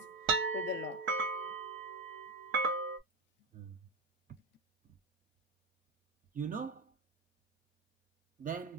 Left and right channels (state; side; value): quieter; left; 3.1 dB